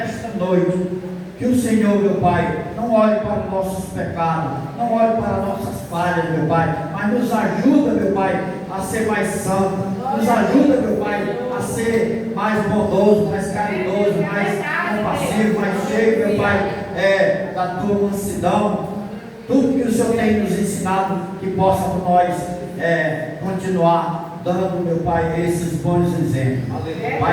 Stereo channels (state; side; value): identical; both; correlation 1.00